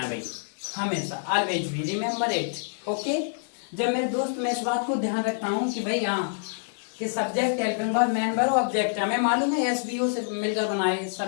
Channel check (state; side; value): silent; right; 60 dB below the other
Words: भाई, हमेशा, ऑलवेज भी रिमेम्बर इट, ओके। जब मेरे दोस्त मैं इस बात को ध्यान रखता हूँ कि भाई हाँ, कि subject, helping verb, main verb, object, हमें मालूम है SVO से मिलकर बनाए,